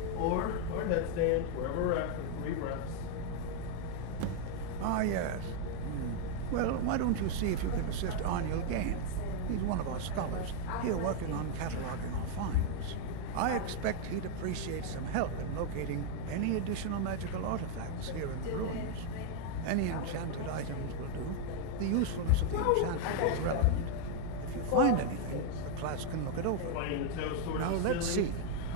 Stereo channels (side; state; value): both; different; correlation 0.00